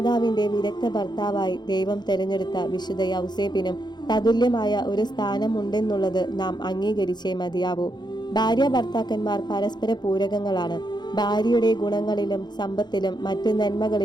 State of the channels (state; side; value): late; right; 0.21 ms